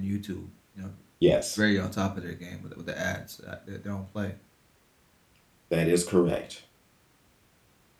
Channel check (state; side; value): identical; both; correlation 1.00